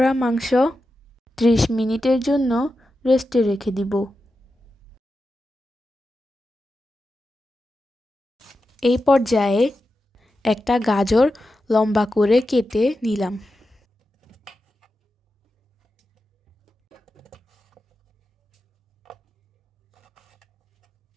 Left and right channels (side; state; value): both; normal; correlation 0.90